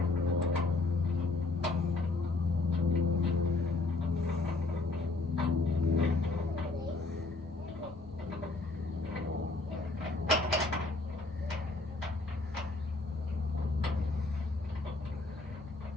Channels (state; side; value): quieter; right; 3.4 dB